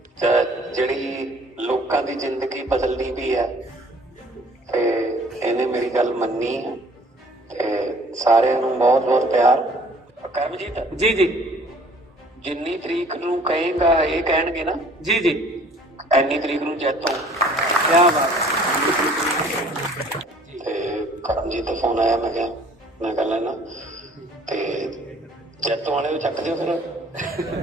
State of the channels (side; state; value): both; normal; correlation 0.54